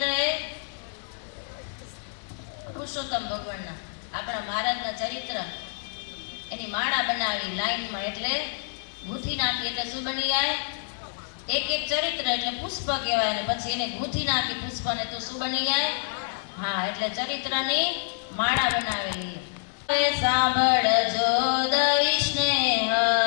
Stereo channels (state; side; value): silent; right; digital silence